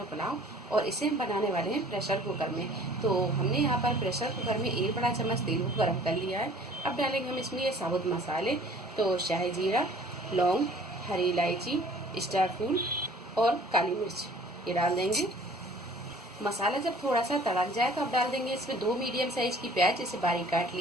पुलाव, और इसे हम बनाने वाले हैं प्रेशर कुकर में। तो हमने यहाँ पर प्रेशर कुकर में 1 बड़ा चम्मच तेल को गर्म कर लिया है। अब डालेंगे हम इसमें ये साबुत मसाले, तो शाही जीरा, लौंग, हरी इलायची, स्टार फूल और काली मिर्च ये डाल देंगे। मसाला जब थोड़ा सा तड़क जाए तो अब डाल देंगे इसमें 2 मीडियम साइज की प्याज, इसे बारीक काट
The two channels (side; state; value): both; normal; correlation 0.51